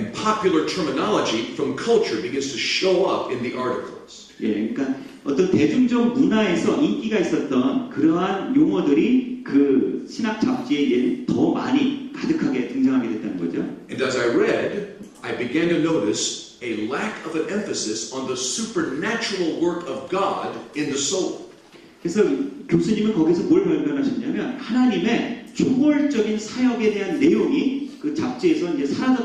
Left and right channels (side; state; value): both; identical; correlation 1.00